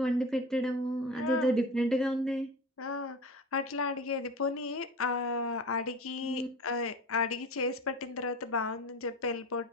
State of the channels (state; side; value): normal; both; correlation 0.33